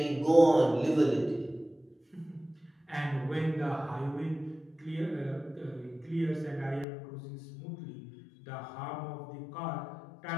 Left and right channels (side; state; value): right; drops out; at 6.9 s